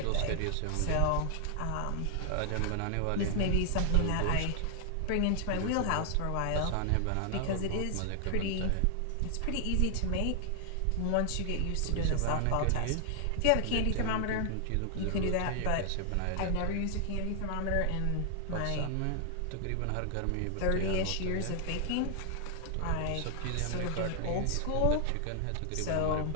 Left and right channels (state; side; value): different; both; correlation 0.00